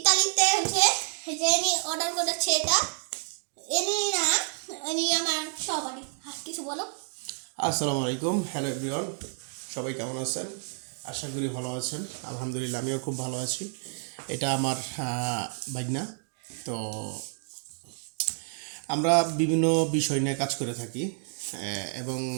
হচ্ছে যে ইনি অর্ডার করেছে, এটা ইনি আমার সহপাঠী। কিছু বলো। আসসালামু আলাইকুম, হ্যালো এভরিওয়ান, সবাই কেমন আছেন? আশা করি ভালো আছেন। আলহামদুলিল্লাহ, আমিও খুব ভালো আছি। এটা আমার ভাগনা। তো আমরা বিভিন্ন বিষয় নিয়ে কাজ করে থাকি এবং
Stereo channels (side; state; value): left; silent; 58 dB below the other